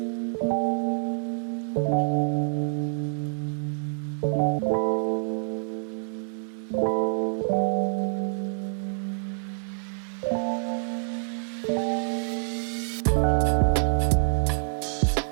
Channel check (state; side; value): silent; left; digital silence